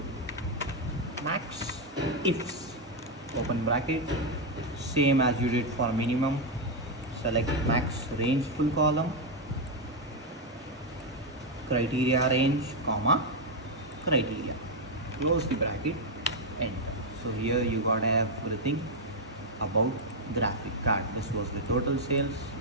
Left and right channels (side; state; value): both; normal; correlation 0.02